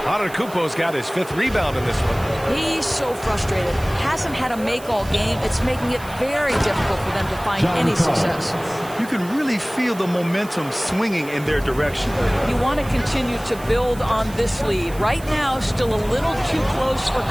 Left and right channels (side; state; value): right; noise; hiss, 19 dB below the sound